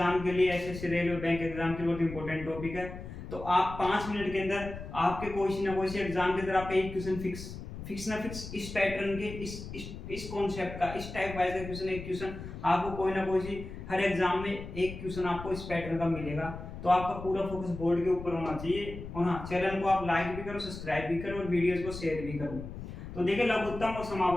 के लिए, एसएससी रेलवे बैंक एग्जाम के लिए बहुत इंपॉर्टेंट टॉपिक है। तो आप 5 मिनट के अंदर आपके कोई ना कोई एग्जाम के अंदर आपका एक क्वेश्चन फिक्स इस पैटर्न के इस कॉन्सेप्ट का, इस टाइप वाइज का क्वेश्चन, एक क्वेश्चन आपको कोई ना कोई हर एग्जाम में एक क्वेश्चन आपको इस पैटर्न का मिलेगा। तो आपका पूरा फोकस बोर्ड के ऊपर होना चाहिए। और हाँ, चैनल को आप लाइक भी करो, सब्सक्राइब भी करो और वीडियोस को शेयर भी करो। तो देखिए, लघुत्तम और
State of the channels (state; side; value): noise; left; rumble, 10 dB below the sound